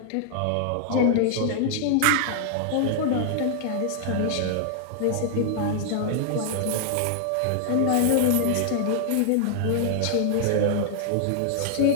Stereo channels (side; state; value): both; different; correlation -0.01